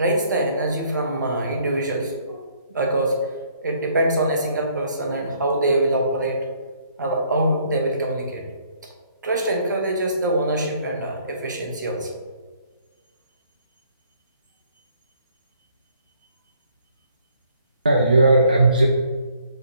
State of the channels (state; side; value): inverted; both; correlation -0.64